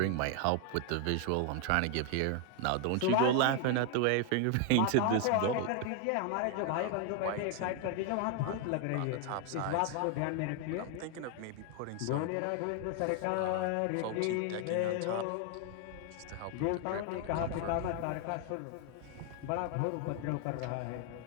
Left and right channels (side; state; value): both; different; correlation 0.00